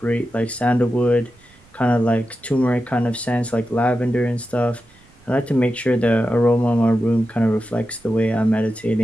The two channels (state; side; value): noise; right; rumble, 29 dB below the sound